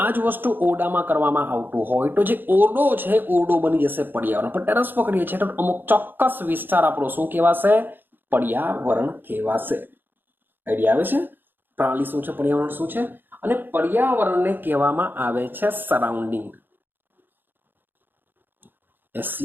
આ જ વસ્તુ ઓરડામાં કરવામાં આવતું હોય તો જે ઓરડો છે ઓરડો બની જશે પર્યાવરણ. પણ ટેરેસ પર કરીએ છીએ તો અમુક ચોક્કસ વિસ્તાર આપણો શું કહેવાશે? પર્યાવરણ કહેવાશે. આઈડિયા આવે છે? પ્રણાલી શું છે, પર્યાવરણ શું છે? અને પર્યાવરણને કહેવામાં આવે છે સરાઉન્ડિંગ.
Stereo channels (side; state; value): left; late; 0.095 ms